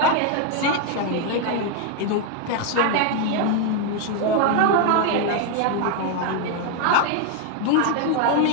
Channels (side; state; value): both; different; correlation 0.01